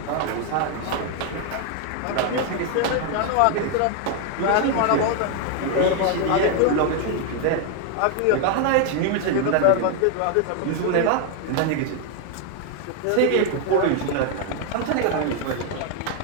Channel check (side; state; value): both; different; correlation 0.01